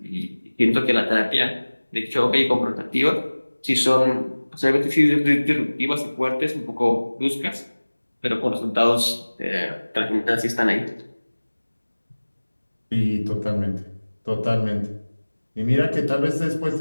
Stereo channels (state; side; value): inverted; both; correlation -1.00